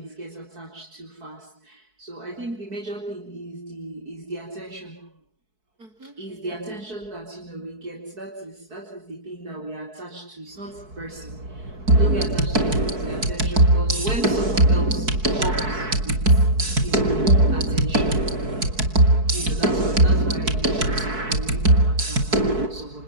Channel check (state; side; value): late; left; 4.6 ms